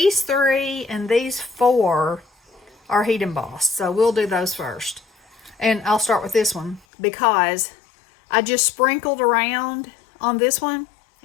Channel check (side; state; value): right; drops out; at 6.8 s